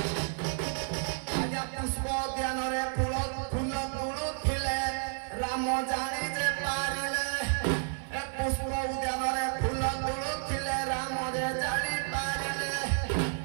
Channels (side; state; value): left; silent; 57 dB below the other